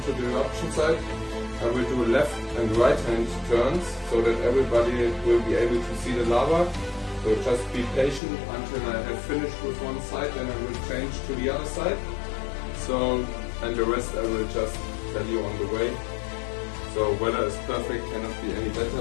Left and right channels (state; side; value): drops out; right; at 8.2 s